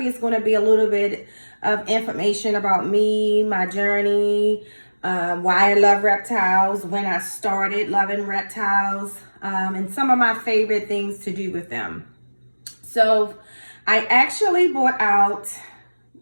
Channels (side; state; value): both; inverted; correlation -1.00